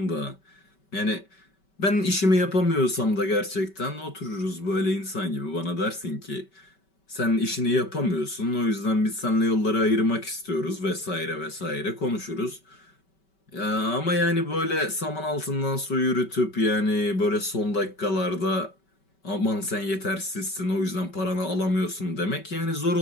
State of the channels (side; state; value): right; late; 5.2 ms